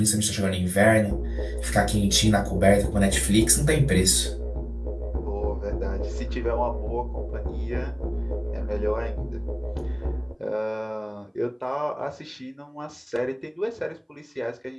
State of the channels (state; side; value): identical; both; correlation 1.00